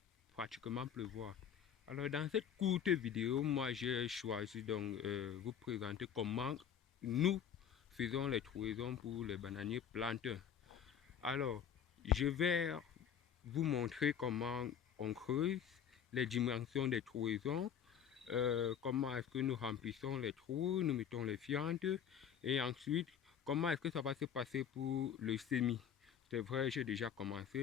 pratiquement pleuvoir. Alors, dans cette courte vidéo, moi, j'ai choisi donc vous présenter comment nous faisons les trouaisons pour les bananiers planteurs. Alors, je vais vous montrer comment on creuse, les dimensions des trouaisons, comment est-ce que nous remplissons les trous, nous mettons les fientes et ensuite comment est-ce que ça va se passer pour le semis. C'est vrai, j'ai déjà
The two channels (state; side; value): quieter; right; 8.4 dB